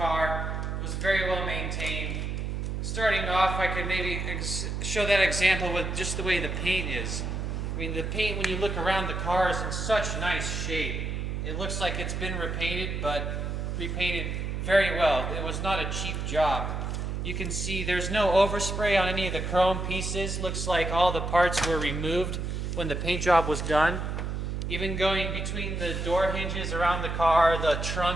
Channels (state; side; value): noise; right; hum, 3 dB below the sound